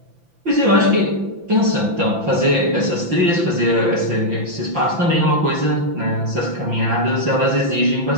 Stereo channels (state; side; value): late; left; 5.9 ms